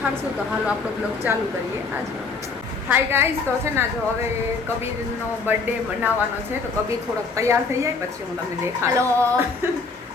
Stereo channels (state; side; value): quieter; right; 4.3 dB